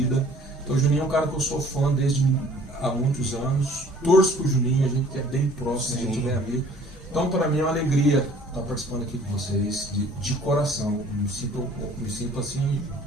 Então o Juninho é um cara que eu sou fã desde há muitos anos. Torço pro Juninho, a gente é bem próximo, a gente é bem amigo. Então para mim é uma alegria estar participando aqui com vocês, de coração. Me sinto assim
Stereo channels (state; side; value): normal; both; correlation 0.53